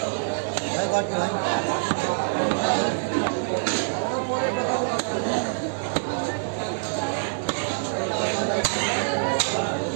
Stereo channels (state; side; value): silent; left; digital silence